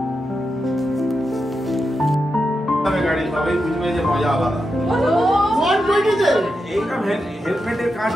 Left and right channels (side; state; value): both; normal; correlation 0.87